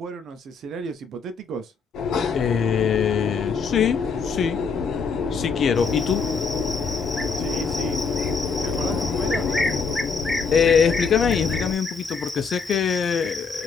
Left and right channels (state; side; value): quieter; right; 5.3 dB